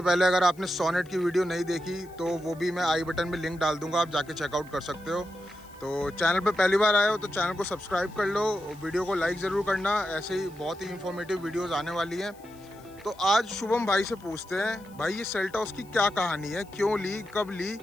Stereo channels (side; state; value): left; noise; hiss, 27 dB below the sound